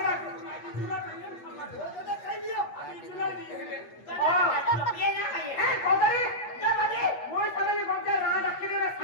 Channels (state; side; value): late; right; 8.4 ms